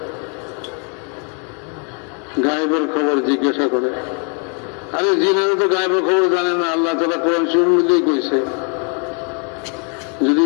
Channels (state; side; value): quieter; right; 38.8 dB